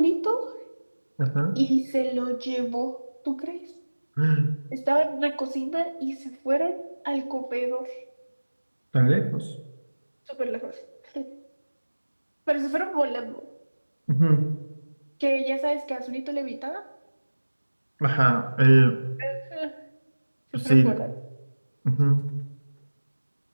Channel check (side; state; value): both; inverted; correlation -1.00